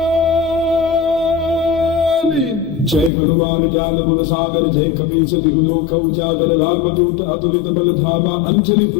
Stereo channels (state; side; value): drops out; right; at 3.1 s